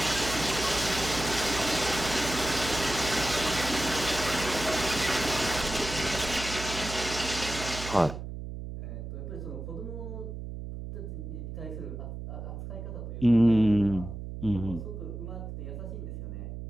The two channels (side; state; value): right; noise; hum, 8 dB below the sound